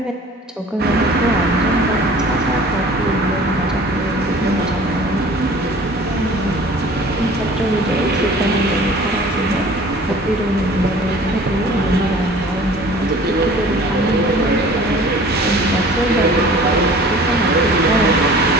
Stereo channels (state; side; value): normal; both; correlation 0.46